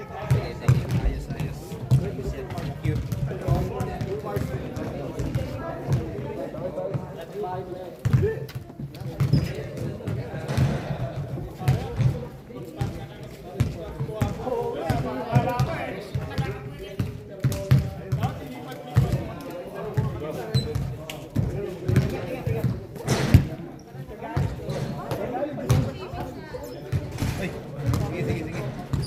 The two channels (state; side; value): identical; both; correlation 1.00